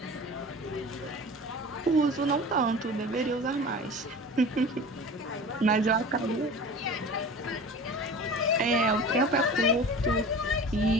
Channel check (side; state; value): both; normal; correlation 0.37